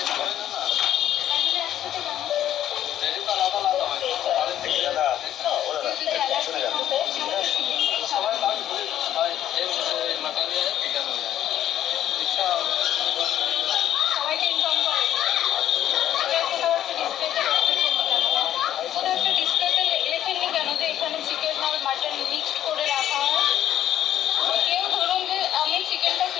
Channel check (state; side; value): quieter; right; 11.5 dB